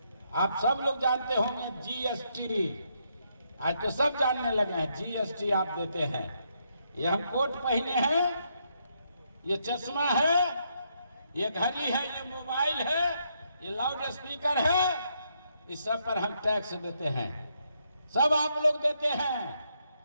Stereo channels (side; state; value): both; inverted; correlation -0.77